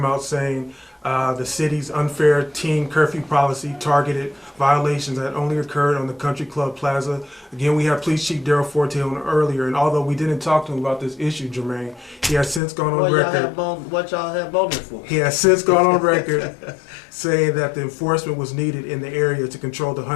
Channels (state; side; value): drops out; right; at 12.6 s